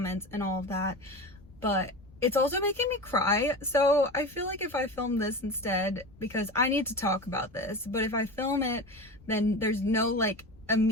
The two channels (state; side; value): noise; left; rumble, 25 dB below the sound